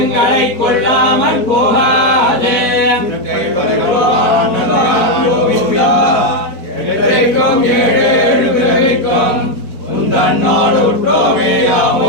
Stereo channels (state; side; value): late; right; 4.5 ms